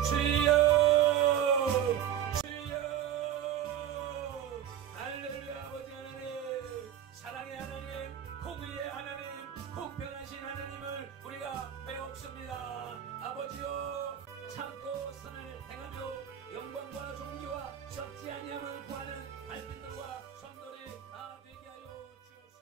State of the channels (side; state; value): left; quieter; 10.3 dB